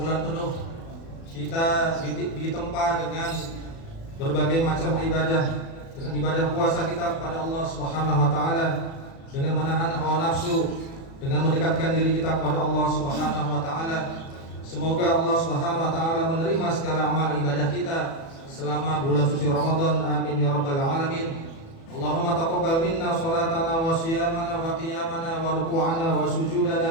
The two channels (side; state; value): right; late; 36 ms